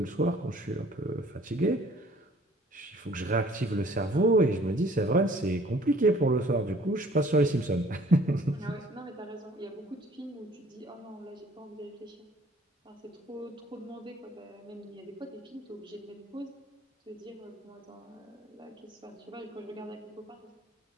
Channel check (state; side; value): normal; both; correlation 0.55